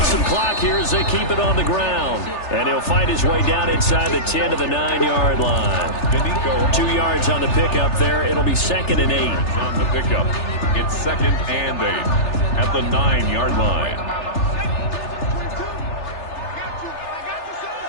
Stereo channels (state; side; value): late; right; 3.3 ms